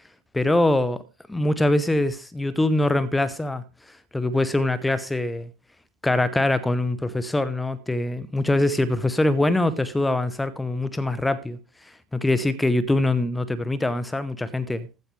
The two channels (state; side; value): normal; both; correlation 0.90